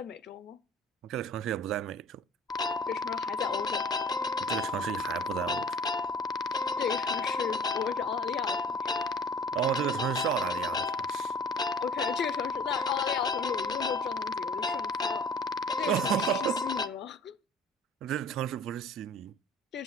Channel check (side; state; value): both; normal; correlation 0.46